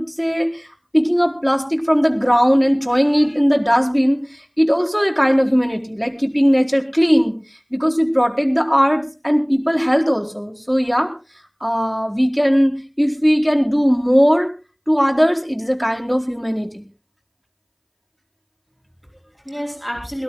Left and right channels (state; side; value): identical; both; correlation 1.00